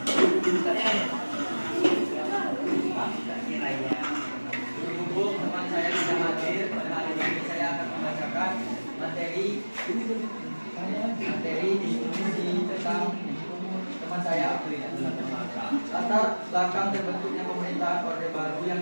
Berhubung teman saya tidak hadir pada hari ini, saya akan membacakan materi diskusi tentang teman saya April. Latar belakang terbentuknya pemerintahan Orde Baru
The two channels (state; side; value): inverted; both; correlation -1.00